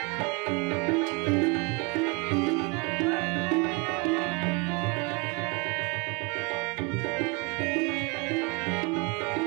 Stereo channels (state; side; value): quieter; left; 29.6 dB